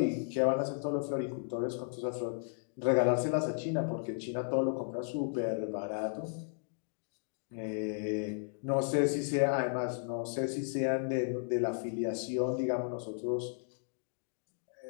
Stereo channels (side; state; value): right; silent; digital silence